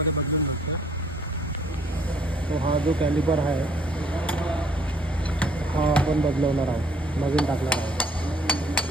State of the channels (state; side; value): normal; both; correlation 0.62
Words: बदलून जातं. तो हा जो कॅलिपर आहे हा आपण बदलवणार आहोत, नवीन टाकणार आहोत.